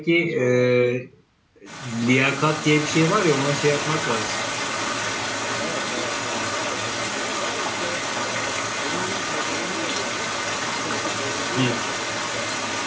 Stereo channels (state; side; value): identical; both; correlation 1.00